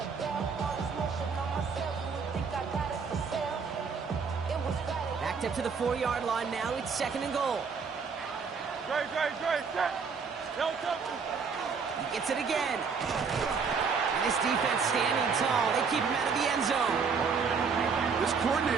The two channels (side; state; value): left; quieter; 5.5 dB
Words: Backed up to the 4-yard line now. It's 2nd and goal. Great. Set. No touch. He gets it again. And this defense standing tall. They keep him out of the end zone. This